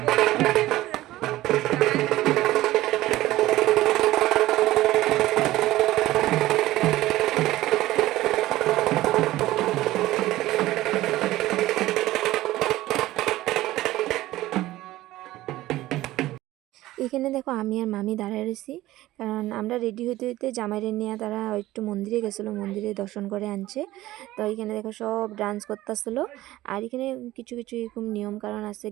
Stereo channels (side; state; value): left; quieter; 16.4 dB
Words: এখানে দেখো আমি আর মামি দাঁড়ায় রয়েছি, কারণ আমরা রেডি হইতে হইতে জামাইরে নিয়ে তারা একটু মন্দিরে গেছিলো, মন্দিরে দর্শন করে আনছে। তো এখানে দেখো সব ডান্স করতেছিল, আর এখানে কিছু কিছু এরকম নিয়ম কারণ আছে,